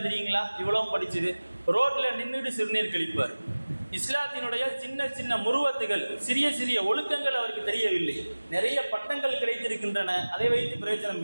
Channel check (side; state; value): both; inverted; correlation -1.00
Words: தெரியுங்களா? இவ்வளவும் படிச்சுது ரோட்டில் நின்றுட்டு சிறுநீர் கழிப்பார். இஸ்லாத்தினுடைய சின்ன சின்ன முருவத்துகள், சிறிய சிறிய ஒழுக்கங்கள் அவருக்கு தெரியவில்லை. நிறைய பட்டங்கள் கிடைத்திருக்கின்றன, அதை வைத்து பிரயோஜனம்